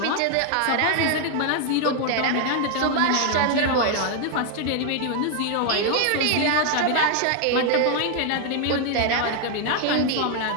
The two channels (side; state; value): both; different; correlation 0.00